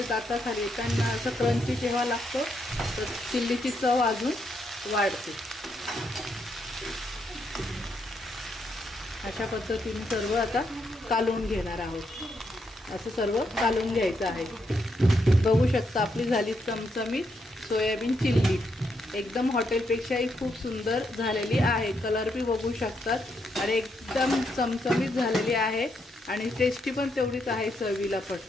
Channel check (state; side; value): normal; both; correlation 0.79